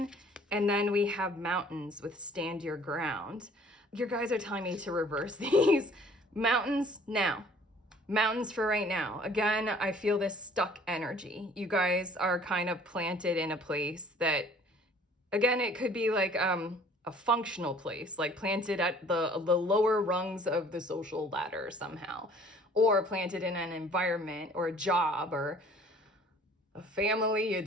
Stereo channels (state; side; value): normal; both; correlation 0.54